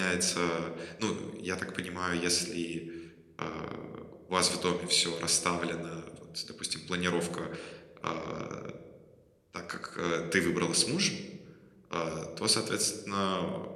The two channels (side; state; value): both; identical; correlation 1.00